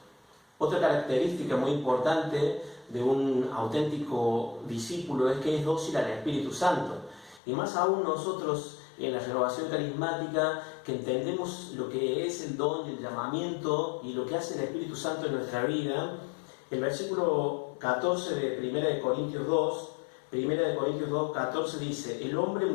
Otra característica muy importante de un auténtico discípulo es que es dócil al Espíritu Santo. Y más aún nosotros en la renovación carismática, que entendemos lo que es el don, el llamamiento y lo que hace el Espíritu Santo en nuestra vida. El versículo 14 de 1 Corintios 2, 14 dice, el hombre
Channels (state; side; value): drops out; right; at 7.4 s